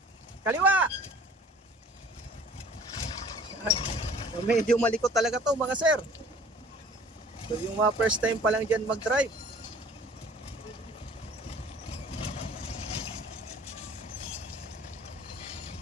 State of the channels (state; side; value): normal; both; correlation 0.50